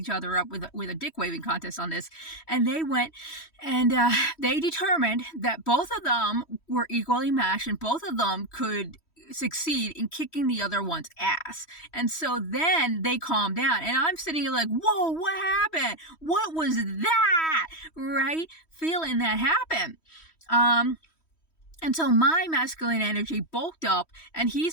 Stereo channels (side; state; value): right; late; 3.1 ms